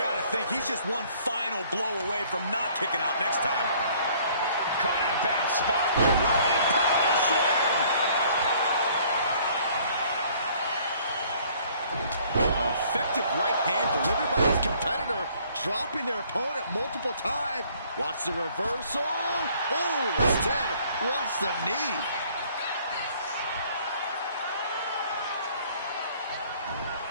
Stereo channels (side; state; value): both; inverted; correlation -0.58